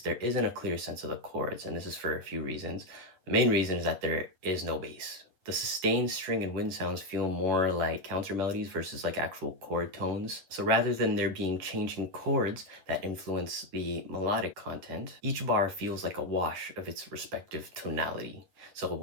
isn't a clear sense of the chords, and this is for a few reasons. The main reason is that there is no bass. The sustained string and wind sounds feel more like counter melodies versus like actual chord tones. So rather than there being changing chords that influence the melodic content, each bar feels like a wash of its respective tonality. So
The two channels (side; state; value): left; late; 11 ms